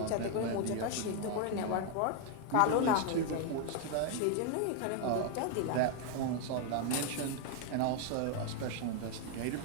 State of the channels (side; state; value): both; different; correlation 0.01